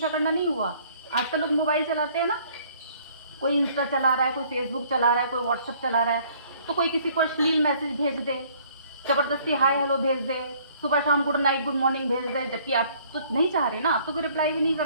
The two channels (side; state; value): both; inverted; correlation -0.59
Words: करना नहीं हुआ। आजकल लोग मोबाइल चलाते हैं ना, कोई इंस्टा चला रहा है, कोई फेसबुक चला रहा है, कोई व्हाट्सएप चला रहा है, तो कोई किसी को अश्लील मैसेज भेज दे, ज़बरदस्ती हाय हेलो भेज दे, सुबह शाम गुड नाइट गुड मॉर्निंग भेज दे, जबकि आप तो नहीं चाह रहे ना, आप तो कोई रिप्लाई भी नहीं